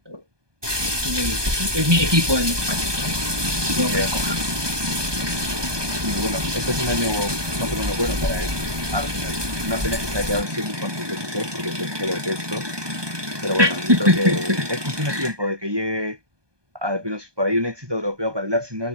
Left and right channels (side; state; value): left; late; 1.2 ms